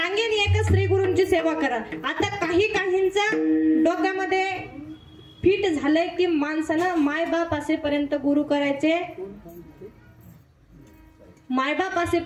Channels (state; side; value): identical; both; correlation 1.00